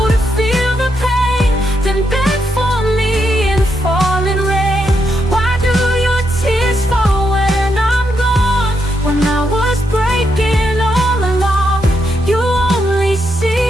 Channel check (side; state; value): both; normal; correlation 0.81